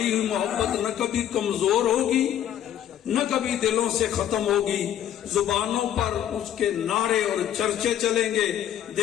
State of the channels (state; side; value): quieter; right; 10.8 dB